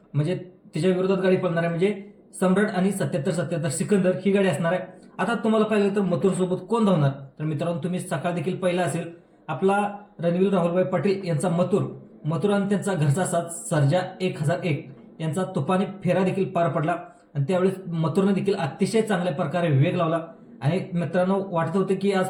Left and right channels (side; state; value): both; identical; correlation 1.00